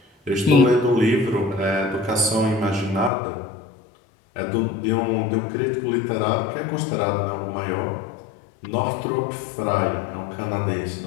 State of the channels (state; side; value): drops out; right; at 3.1 s